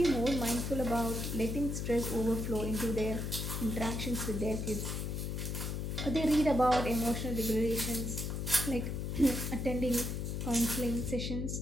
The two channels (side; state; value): left; noise; hum, 3 dB below the sound